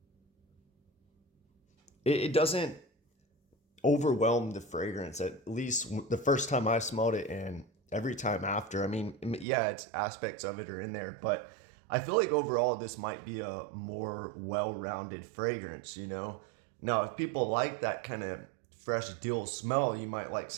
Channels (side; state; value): left; drops out; at 9.5 s